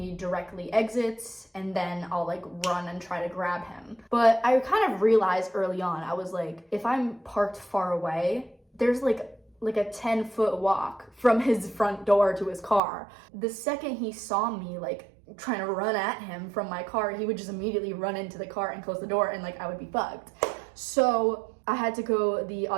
directly exits, and then I'll like run and try to grab him. But I kind of realized early on, I was like, if I'm parked far away, there's like a 10-foot walk from his front door to his car. The second he saw me like trying to run at him from my car, he would just immediately run into the car and close the door and like I would be fucked. So I had to go the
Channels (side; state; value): left; drops out; at 12.8 s